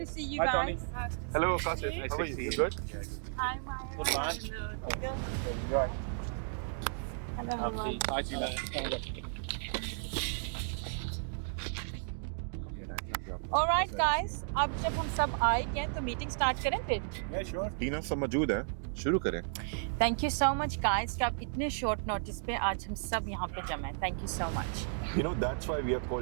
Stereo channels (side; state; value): left; silent; digital silence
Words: see you Hi, Tony. guys. Nice to Hello see Kashif, you. how are you? You good? Hi Maya. Good man. Hello. Take care. Going. Hello everyone. Hi Tina. Alright guys, अब जब हम सब आए गए तो meeting start करें फिर। Yeah, sure. टीना सब मौजूद है, शुरू करें। Thank you so much guys कि आप इतने शॉर्ट नोटिस पे आज हम सब यहाँ पे जमे। Thank you so much. You know that's why we are